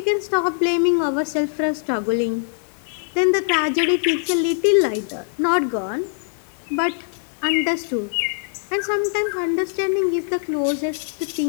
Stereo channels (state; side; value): silent; right; digital silence